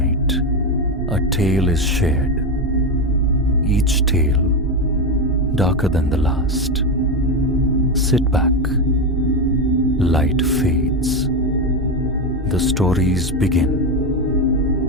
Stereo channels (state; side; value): normal; both; correlation 0.12